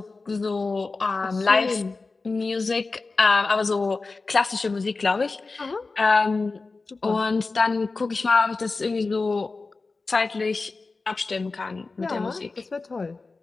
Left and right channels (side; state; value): right; quieter; 3.8 dB